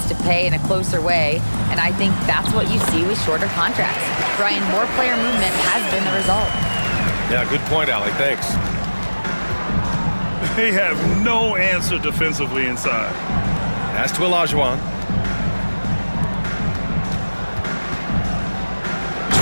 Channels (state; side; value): inverted; both; correlation -1.00